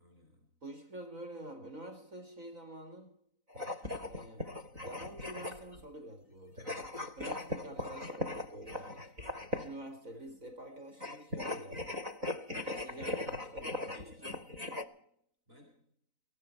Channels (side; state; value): left; late; 4.0 ms